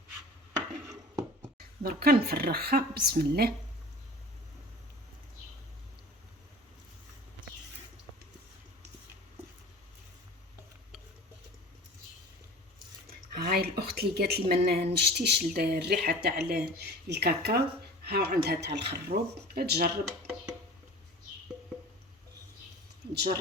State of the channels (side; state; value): both; normal; correlation 0.40